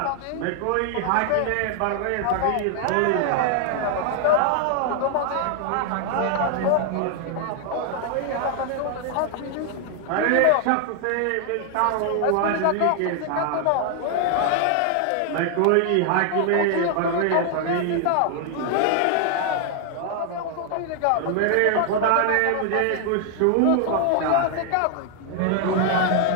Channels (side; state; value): both; different; correlation 0.00